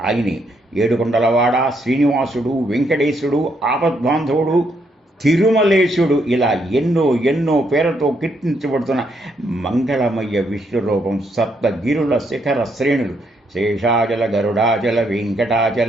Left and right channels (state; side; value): normal; both; correlation 0.75